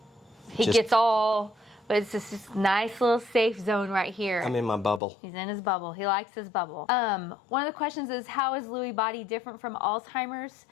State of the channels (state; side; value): drops out; right; at 5.0 s